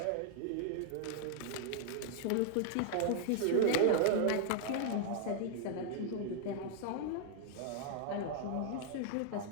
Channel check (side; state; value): both; different; correlation 0.00